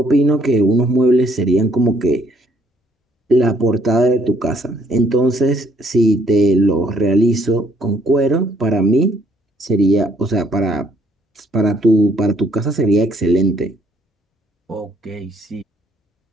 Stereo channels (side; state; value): both; normal; correlation 0.66